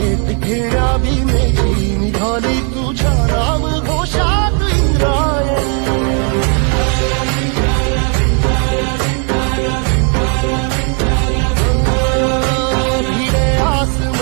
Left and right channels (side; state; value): left; quieter; 39.8 dB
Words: घेण्या भीमेची निघाली तुझ्या नाम घोषात इंद्रायणी भिडे